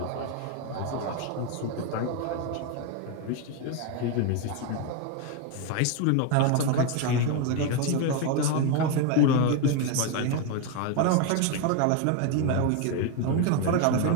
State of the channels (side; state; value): both; different; correlation 0.02